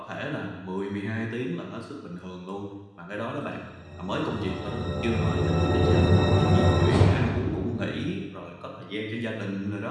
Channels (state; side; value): identical; both; correlation 1.00